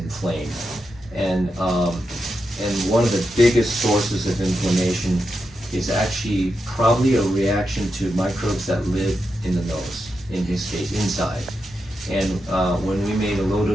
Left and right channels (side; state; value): both; normal; correlation 0.87